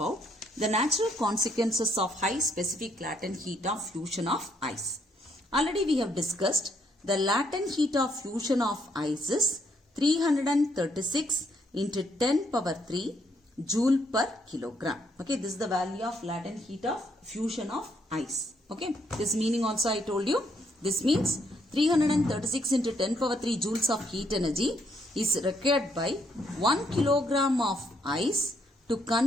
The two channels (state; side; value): normal; both; correlation 0.71